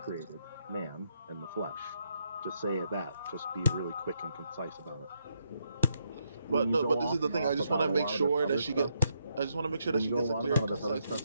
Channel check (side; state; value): both; inverted; correlation -0.78